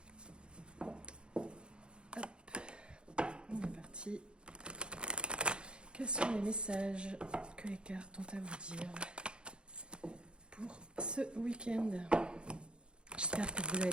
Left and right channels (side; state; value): left; late; 0.053 ms